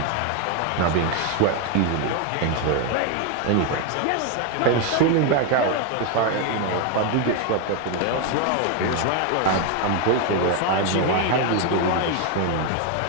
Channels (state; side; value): different; both; correlation 0.01